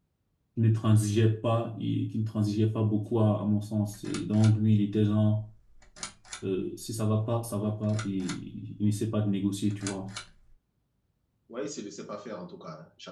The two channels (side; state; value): both; identical; correlation 1.00